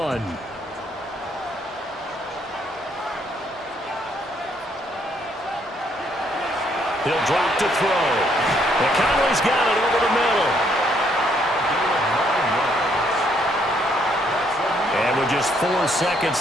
He'll drop to throw. And Conley's got it over the middle. And with just 4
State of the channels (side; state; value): both; normal; correlation 0.70